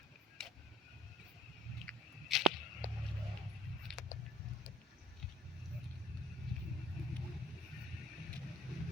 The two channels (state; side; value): normal; both; correlation 0.52